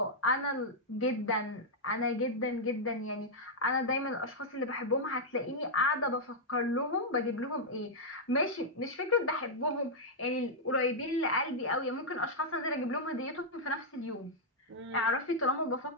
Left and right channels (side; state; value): both; normal; correlation -0.06